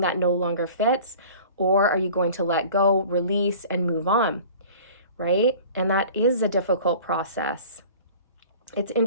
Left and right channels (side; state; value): both; inverted; correlation -0.44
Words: no longer fits? Or are you going to let go, release, and move on? Right? And that is a difficult process. It's